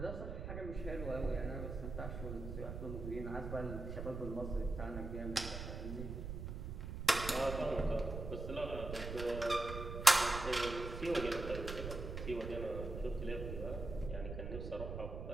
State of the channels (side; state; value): right; noise; rumble, 6 dB below the sound